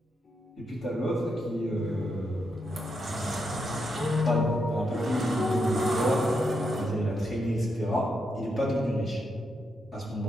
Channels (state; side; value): normal; both; correlation 0.82